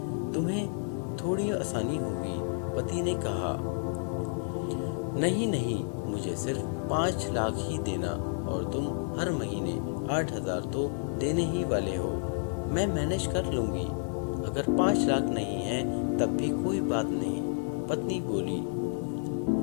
तुम्हें थोड़ी आसानी होगी। पति ने कहा, नहीं नहीं, मुझे सिर्फ 5 लाख ही देना और तुम हर महीने 8,000 तो देने ही वाले हो। मैं मैनेज कर लूंगी। अगर 5 लाख नहीं है तब भी कोई बात नहीं। पत्नी बोली।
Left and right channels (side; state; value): right; silent; digital silence